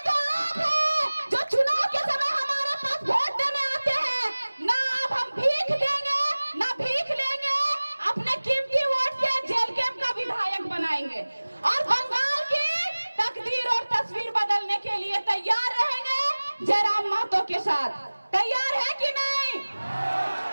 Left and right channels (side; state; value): both; inverted; correlation -1.00